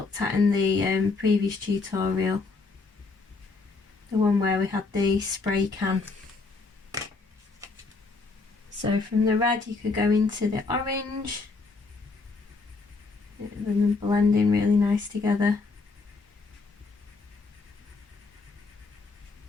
at in the previous tutorial. The one where we had the spray can. So from the red you could go into the orange, and then blending really nice together.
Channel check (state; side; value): quieter; right; 4.0 dB